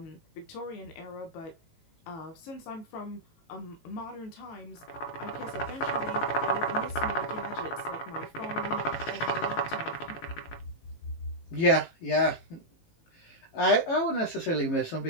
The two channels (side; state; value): right; late; 18 ms